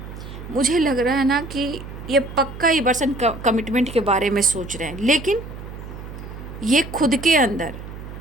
मुझे लग रहा है ना कि ये पक्का ही पर्सन कमिटमेंट के बारे में सोच रहे हैं, लेकिन ये खुद के अंदर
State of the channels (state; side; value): noise; right; hum, 12 dB below the sound